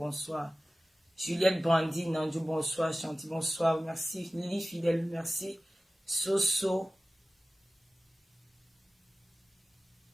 Juliette Brandine, Nandou, bonsoir. Chanty, bonsoir. Merci. Lily Fidèle, merci. Soso.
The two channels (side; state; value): both; normal; correlation 0.96